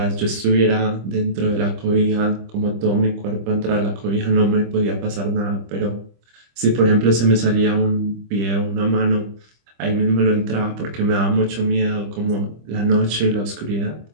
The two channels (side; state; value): left; late; 25 ms